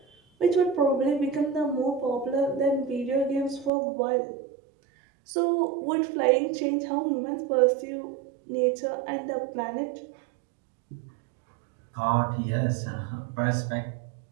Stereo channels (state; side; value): drops out; left; at 3.7 s